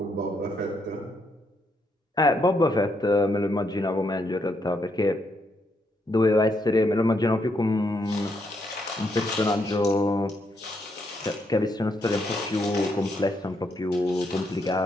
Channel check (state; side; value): normal; both; correlation 0.77